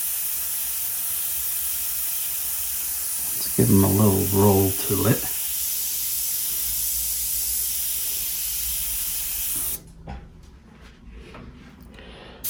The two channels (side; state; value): both; identical; correlation 1.00